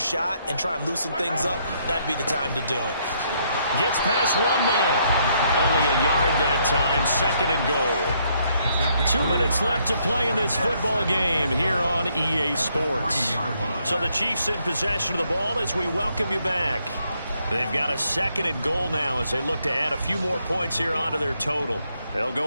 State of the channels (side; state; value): both; inverted; correlation -0.72